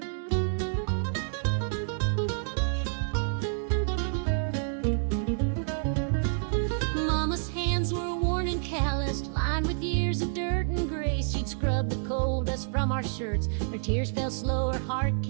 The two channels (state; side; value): silent; left; digital silence